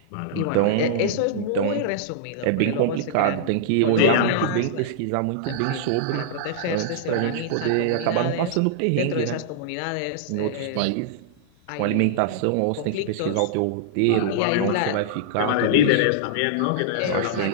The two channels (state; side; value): different; both; correlation -0.02